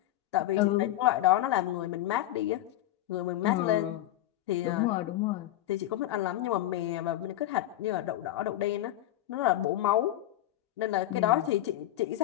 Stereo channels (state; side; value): quieter; right; 14.2 dB